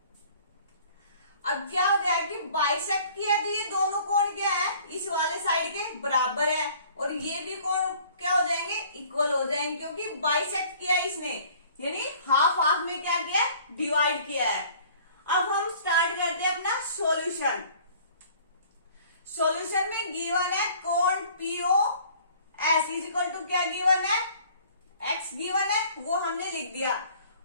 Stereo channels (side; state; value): both; inverted; correlation -0.52